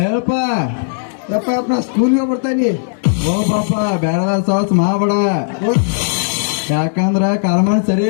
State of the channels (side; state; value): right; silent; 67 dB below the other